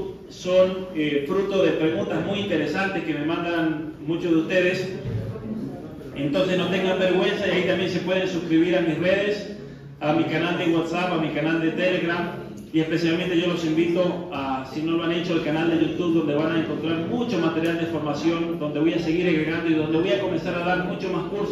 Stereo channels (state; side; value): identical; both; correlation 1.00